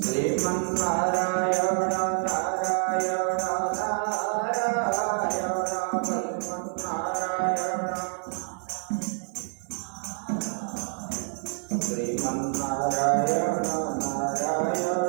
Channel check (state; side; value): silent; left; digital silence